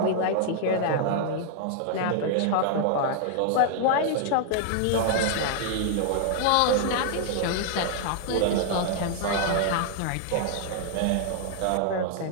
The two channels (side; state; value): both; different; correlation -0.01